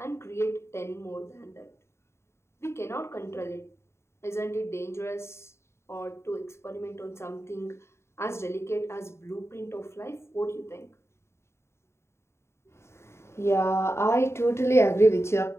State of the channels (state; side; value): late; right; 0.13 ms